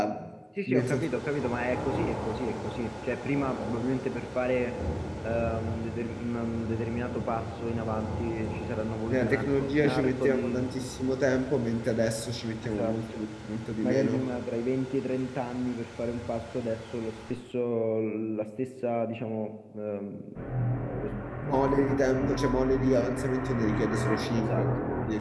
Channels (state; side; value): identical; both; correlation 1.00